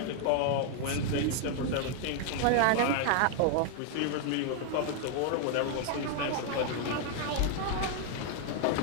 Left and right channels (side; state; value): both; different; correlation 0.00